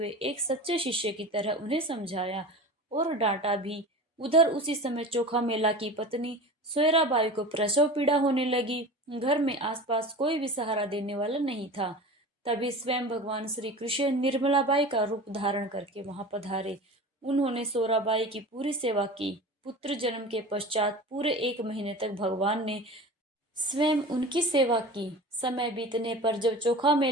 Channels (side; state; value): both; normal; correlation 0.34